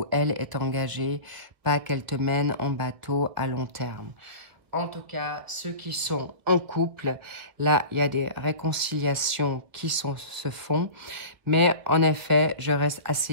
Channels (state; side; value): late; left; 1.5 ms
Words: elle, est engagé, pas qu'elle te mène en bateau à long terme. En tout cas, ceux qui sont en couple, là, il y a des réconciliations qui se font. Mais en effet, je reste